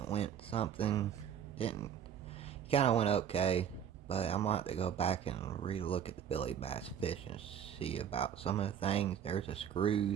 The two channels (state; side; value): quieter; left; 8.8 dB